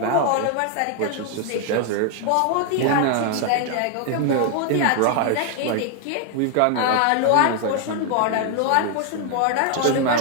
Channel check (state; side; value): different; both; correlation 0.00